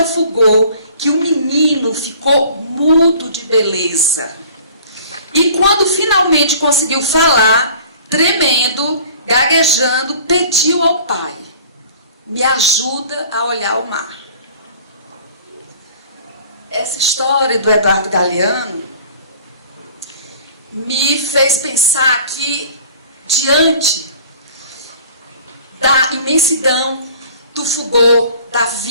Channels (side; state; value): both; inverted; correlation -0.47